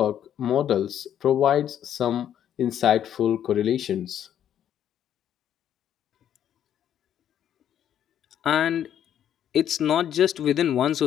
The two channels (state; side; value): quieter; right; 10.0 dB